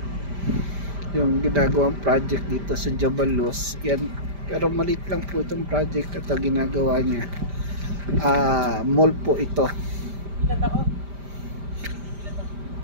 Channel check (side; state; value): left; late; 5.0 ms